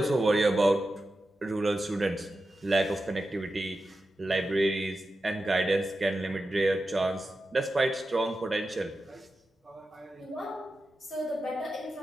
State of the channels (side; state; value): both; normal; correlation 0.91